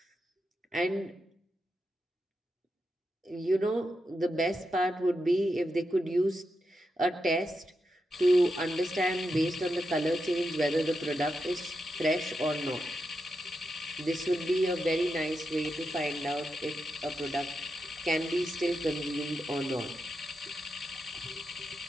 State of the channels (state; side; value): normal; both; correlation 0.86